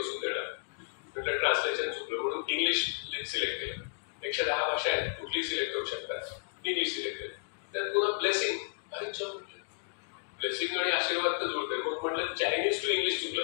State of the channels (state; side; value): silent; right; digital silence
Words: बसून देणार, म्हटलं ट्रान्सलेशन चुकलं म्हणून इंग्लिश सिलेक्ट केलं. 110 भाषा आहेत, कुठली सिलेक्ट करू शकतात, इंग्लिश सिलेक्ट केलं. त्यात पुन्हा ब्लेसिंग, अरे जॉब म्हटलं ब्लेसिंग आणि आशीर्वाद तर जुळते. मग म्हटलं चायनीज टू इंग्लिश चुकलं